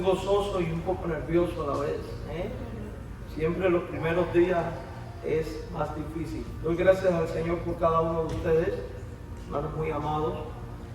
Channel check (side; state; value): both; identical; correlation 1.00